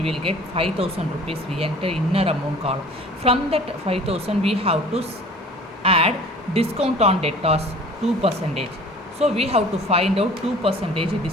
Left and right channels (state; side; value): normal; both; correlation 0.47